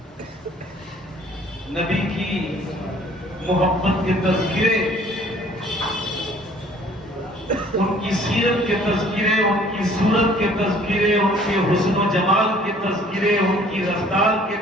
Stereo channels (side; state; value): both; normal; correlation 0.55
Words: نبی کی محبت کے تذکرے، ان کی سیرت کے تذکرے، ان کی صورت کے تذکرے، ان کے حسن و جمال کے تذکرے، ان کی رفتار کے